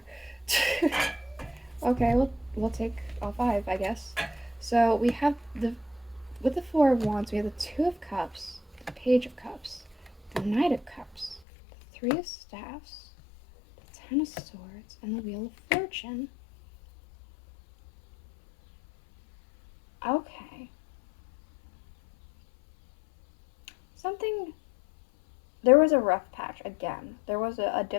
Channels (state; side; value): drops out; right; at 11.4 s